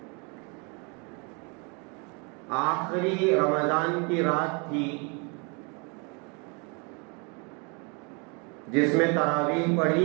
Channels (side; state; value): left; quieter; 32.9 dB